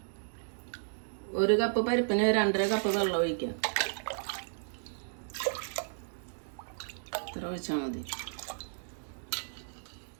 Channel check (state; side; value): silent; left; digital silence